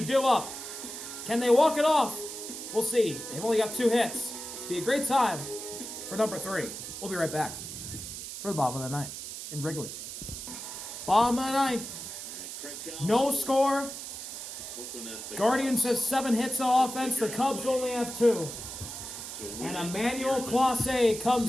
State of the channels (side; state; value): right; noise; hiss, 9 dB below the sound